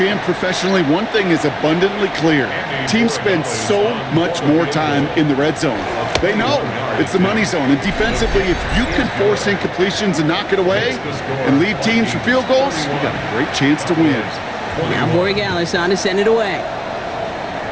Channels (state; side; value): identical; both; correlation 1.00